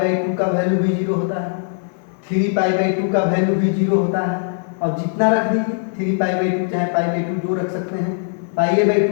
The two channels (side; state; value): right; silent; 59 dB below the other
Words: 2 का वैल्यू भी 0 होता है, 3 पाई बाई 2 का वैल्यू भी 0 होता है। अब जितना रख दीजिए, 3 पाई बाई 2 चाहे पाई बाई 2 जो रख सकते हैं, पाई बाई